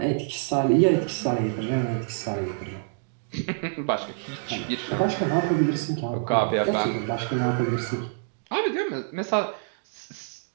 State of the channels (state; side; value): silent; left; digital silence